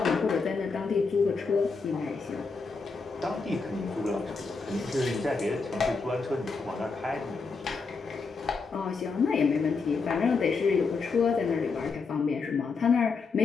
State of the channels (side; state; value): right; quieter; 4.6 dB